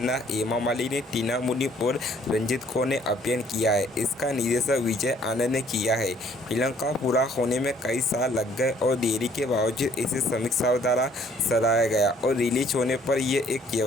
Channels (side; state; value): both; normal; correlation 0.61